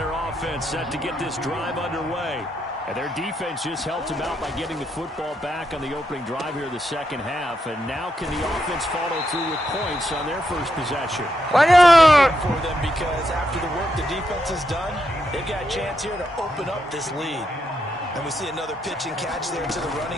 offense set to get this drive underway. And their defense just helped them out by getting the football back on the opening drive here in the second half. And now can the offense follow through with points on their first possession? Why not? For them because after the work the defense has done, they've got a chance here to open up this lead. And we see another pitch and catch there to the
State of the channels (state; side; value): normal; both; correlation 0.81